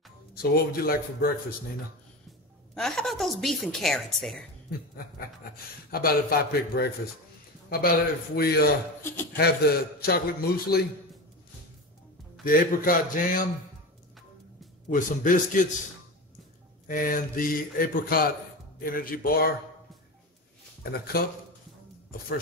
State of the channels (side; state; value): both; normal; correlation 0.25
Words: So what would you like for breakfast, Nina? How about those beef and carrots there? How about if I pick breakfast? How about if we have the chocolate muesli, the apricot jam with some biscuits, and the apricot energy bar, and a cup of